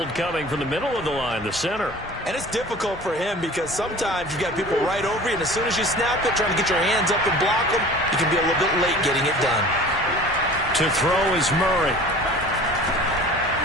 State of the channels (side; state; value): both; normal; correlation 0.42